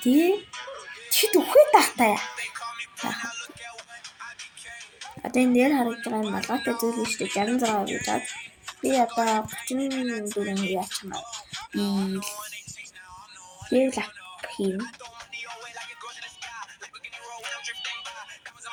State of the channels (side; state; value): both; identical; correlation 1.00